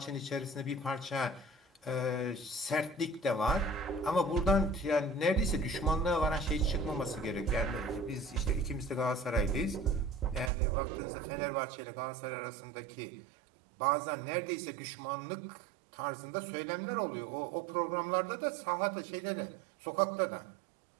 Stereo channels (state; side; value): drops out; left; at 10.5 s